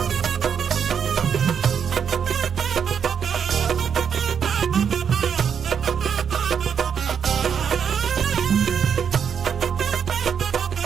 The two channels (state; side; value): quieter; left; 7.4 dB